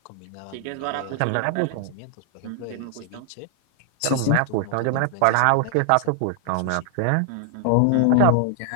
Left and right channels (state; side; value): different; both; correlation 0.00